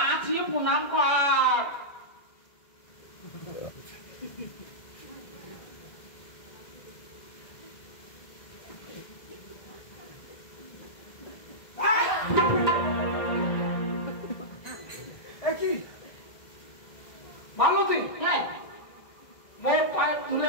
প্রণাম কর মালতী হ্যাঁ মোর পায়ে তুলে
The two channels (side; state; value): right; late; 2.0 ms